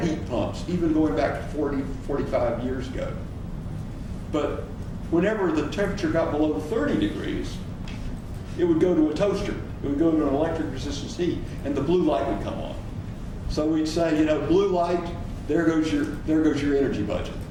heat pumps even going back to 40, 45 years ago. But whenever the temperature got below 30 degrees, it would go to a toaster. It would go to an electric resistance heat, and the blue light would come on. So we'd say, you know, blue light, there goes your energy budget.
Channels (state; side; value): identical; both; correlation 1.00